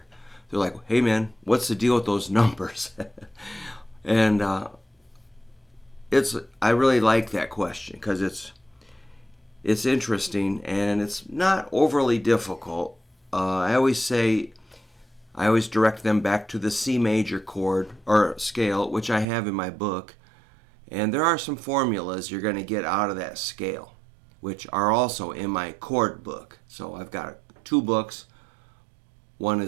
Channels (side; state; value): left; drops out; at 19.2 s